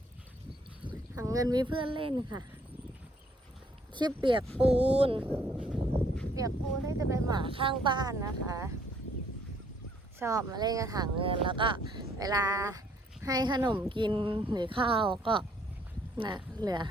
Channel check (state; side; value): normal; both; correlation 0.65